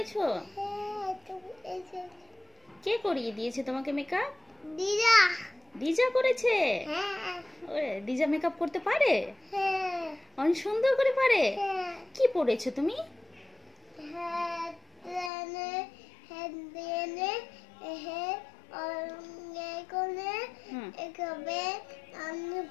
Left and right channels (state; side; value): drops out; right; at 15.3 s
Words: কে করিয়ে দিয়েছে তোমাকে মেকআপ? দিদা। দিজা করেছে? হ্যাঁ। ওরে, দিজা মেকআপ করতে পারে? হ্যাঁ। অনেক সুন্দর করে পারে। হ্যাঁ। কি পরেছো তুমি?